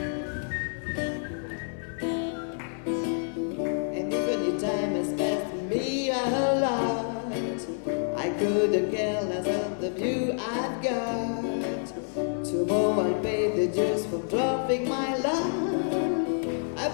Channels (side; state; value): right; silent; 59 dB below the other